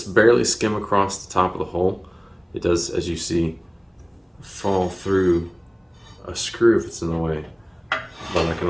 barely skim across the top of the hole. It does, as you see, fall through a screw if it's in the way, but I can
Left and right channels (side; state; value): both; identical; correlation 1.00